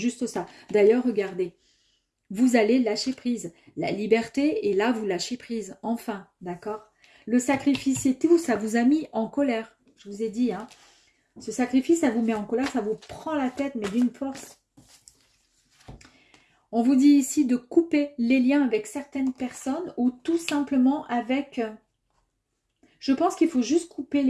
ça. D'ailleurs, regardez, vous allez lâcher prise. La liberté, et là, vous lâchez prise. Enfin, d'accord? Le sacrifice et tout, ça vous a mis en colère. Je vous ai dit, hein. Ce sacrifice, ça vous met en colère, ça vous prend la tête, mais d'une force. On vous dit ici de couper les liens avec certaines personnes ou tout simplement avec... Je pense qu'il faut juste couper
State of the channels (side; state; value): both; identical; correlation 1.00